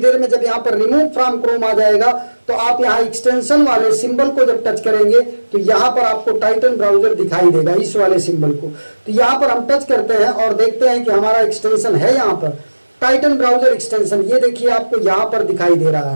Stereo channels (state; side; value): inverted; both; correlation -1.00